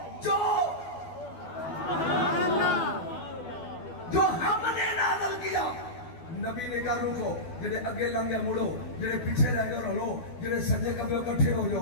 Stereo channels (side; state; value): right; late; 12 ms